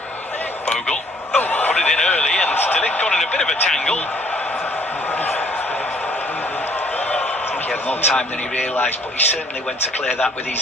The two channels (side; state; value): both; normal; correlation 0.60